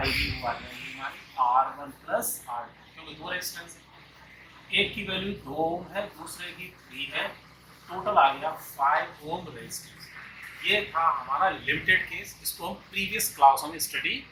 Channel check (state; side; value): identical; both; correlation 1.00